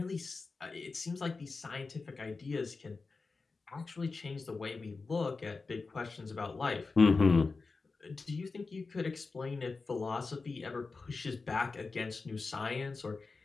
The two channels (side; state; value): right; quieter; 4.1 dB